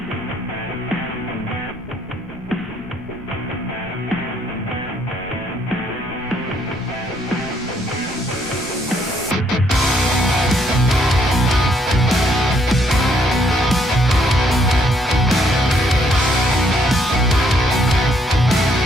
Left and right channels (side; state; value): left; noise; rumble, 18 dB below the sound